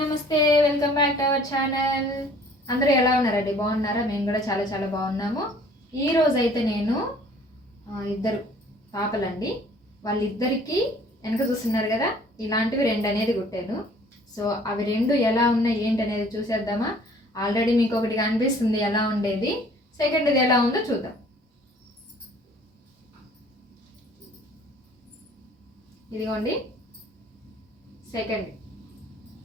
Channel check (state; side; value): normal; both; correlation 0.54